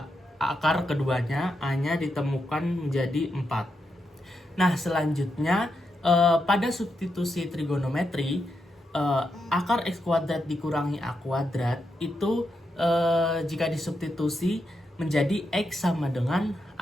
akar keduanya a-nya ditemukan menjadi 4. Nah, selanjutnya pada substitusi trigonometri, akar x kuadrat dikurangi a kuadrat itu jika disubstitusi menjadi x sama dengan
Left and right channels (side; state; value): both; normal; correlation 0.84